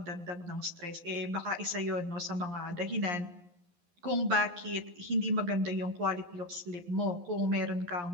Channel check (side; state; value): left; late; 11 ms